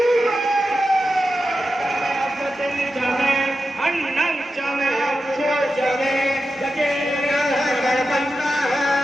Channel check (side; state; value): both; normal; correlation 0.90